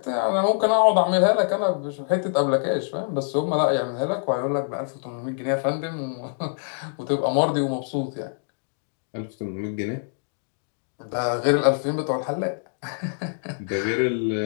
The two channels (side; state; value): right; silent; digital silence